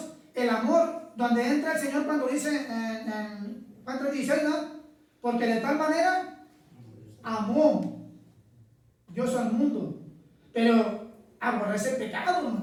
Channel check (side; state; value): both; identical; correlation 1.00